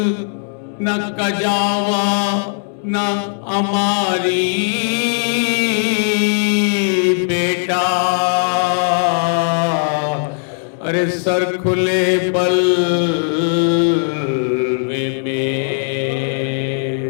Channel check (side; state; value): right; silent; digital silence